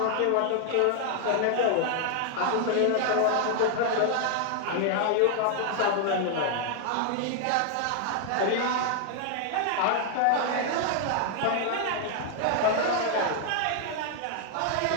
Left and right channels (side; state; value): both; different; correlation 0.00